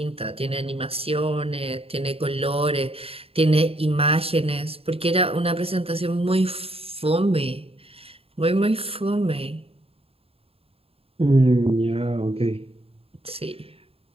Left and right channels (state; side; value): late; left; 0.28 ms